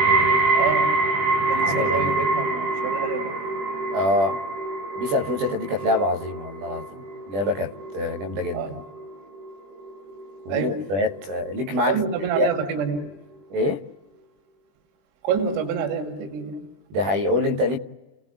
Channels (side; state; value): left; late; 20 ms